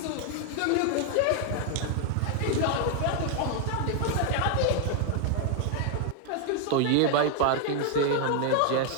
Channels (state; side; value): different; both; correlation 0.00